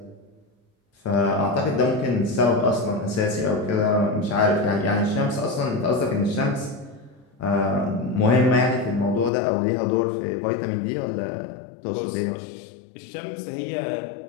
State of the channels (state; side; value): drops out; right; at 9.3 s